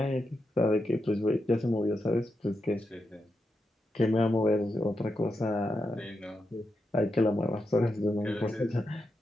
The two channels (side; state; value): both; normal; correlation 0.86